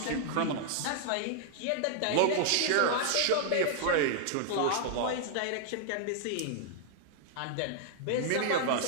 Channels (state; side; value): different; both; correlation -0.01